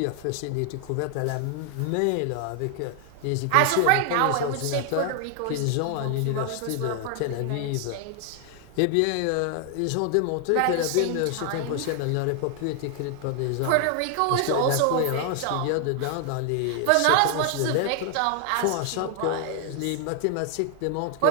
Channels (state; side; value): different; both; correlation 0.00